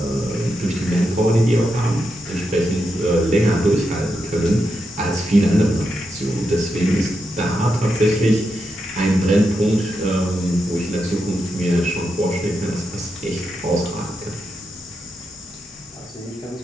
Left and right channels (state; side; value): normal; both; correlation 0.85